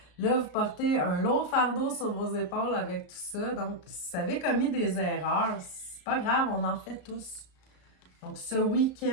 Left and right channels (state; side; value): late; right; 34 ms